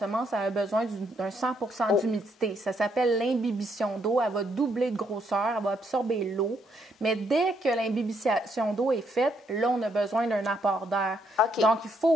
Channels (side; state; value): both; normal; correlation 0.73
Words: a besoin d'un 100 d'humidité. Ça s'appelle l'imbibition d'eau. Elle va doubler de grosseur, elle va absorber l'eau. Mais dès que l'imbibition d'eau est faite, là, on a besoin d'un apport d'air. Donc, il